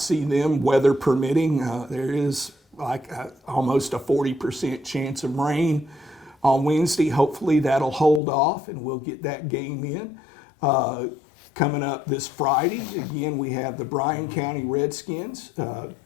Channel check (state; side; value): drops out; right; at 8.2 s